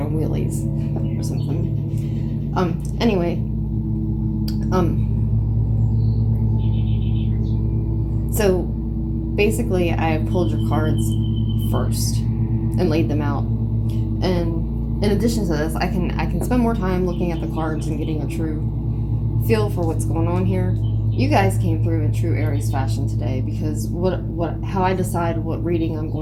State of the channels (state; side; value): identical; both; correlation 1.00